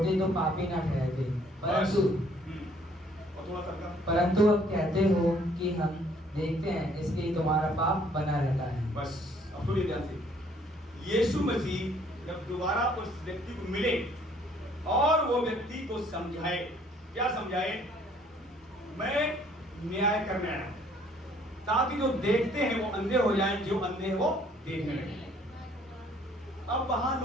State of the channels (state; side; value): normal; both; correlation 0.61